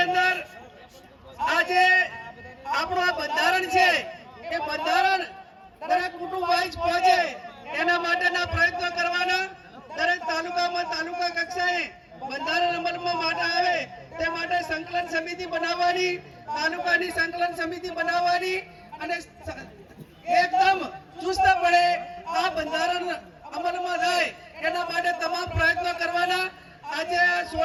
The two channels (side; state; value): both; identical; correlation 1.00